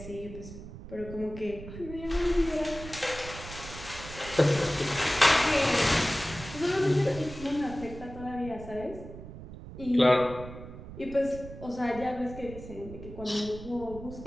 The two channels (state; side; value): noise; right; rumble, 13 dB below the sound